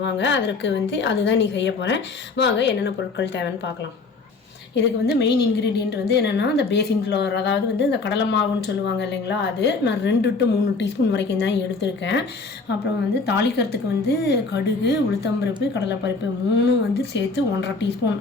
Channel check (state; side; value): quieter; right; 4.0 dB